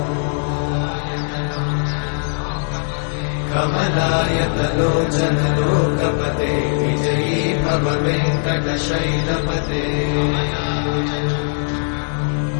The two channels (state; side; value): silent; right; digital silence